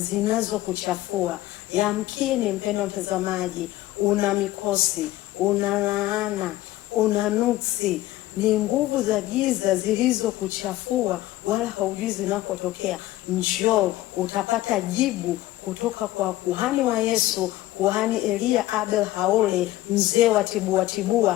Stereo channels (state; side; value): quieter; right; 16.1 dB